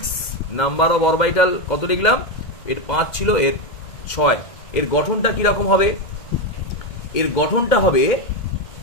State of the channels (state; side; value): late; right; 2.0 ms